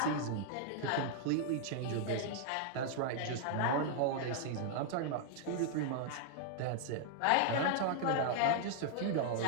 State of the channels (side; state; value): both; different; correlation -0.01